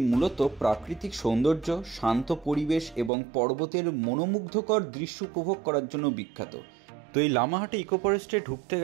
মূলত প্রাকৃতিক সৌন্দর্য, শান্ত পরিবেশ এবং পর্বতের মনোমুগ্ধকর দৃশ্য উপভোগ করার জন্য বিখ্যাত। তো এই লামাহাটা ইকো ফরেস্টে ঢুকতে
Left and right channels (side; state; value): left; drops out; at 3.1 s